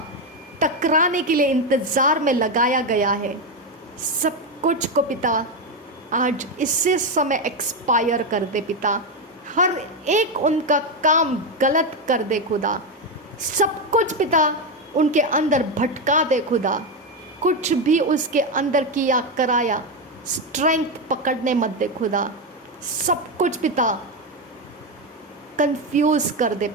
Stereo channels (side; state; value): both; normal; correlation 0.09